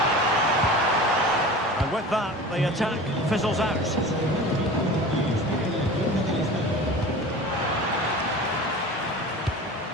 And with that, the attack fizzles out.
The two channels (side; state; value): both; normal; correlation 0.36